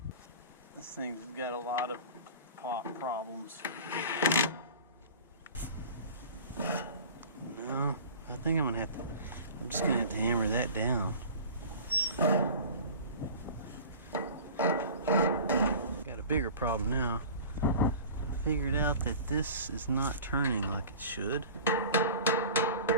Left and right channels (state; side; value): inverted; both; correlation -0.40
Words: This thing's got a lot of pop problems. No, I think I'm just gonna have to hammer that down. Got a bigger problem now. I figured out that this is not turning like it should.